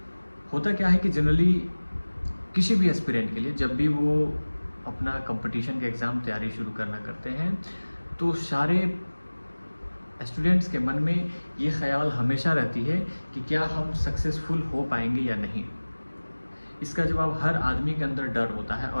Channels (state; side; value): inverted; both; correlation -1.00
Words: होता क्या है कि जनरली किसी भी एस्पिरेंट के लिए जब भी वो अपना कंपटीशन के एग्ज़ाम तैयारी शुरू करना करते हैं तो सारे स्टूडेंट्स के मन में ये ख्याल हमेशा रहती है कि क्या हम सक्सेसफुल हो पाएंगे या नहीं। इसका जवाब हर आदमी के अंदर डर होता है